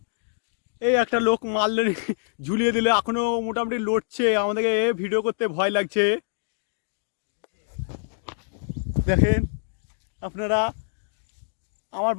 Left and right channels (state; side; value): silent; right; digital silence